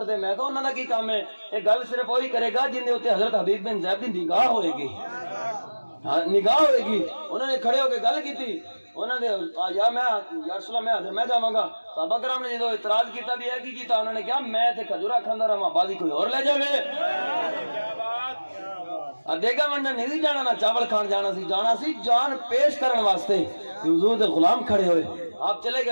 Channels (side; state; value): both; inverted; correlation -1.00